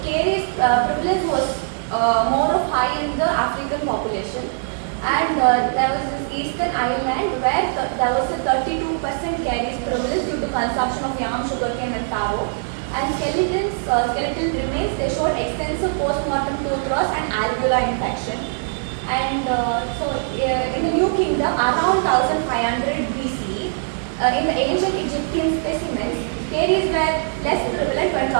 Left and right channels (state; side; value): silent; left; digital silence